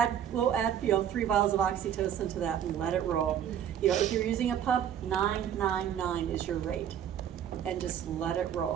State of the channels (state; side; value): quieter; left; 9.5 dB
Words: 3 vials of oxytocin to that and let it roll. You know, if you're using a pump, 999 is your rate. And just let it